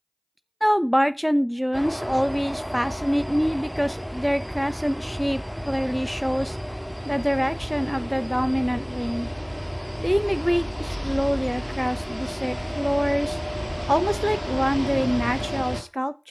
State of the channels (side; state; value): both; identical; correlation 1.00